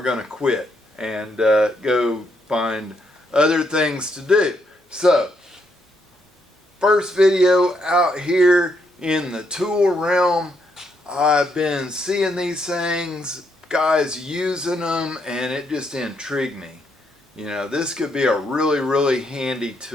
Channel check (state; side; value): normal; both; correlation 0.76